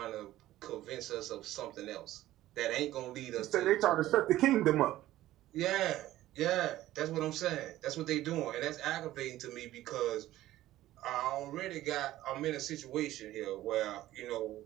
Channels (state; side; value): quieter; left; 14.9 dB